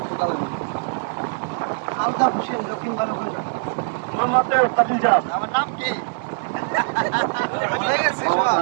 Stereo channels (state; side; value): silent; left; digital silence